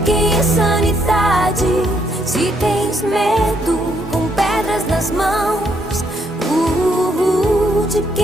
quem é sanidade? Se tens medo com pedras nas mãos, de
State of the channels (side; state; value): both; normal; correlation 0.73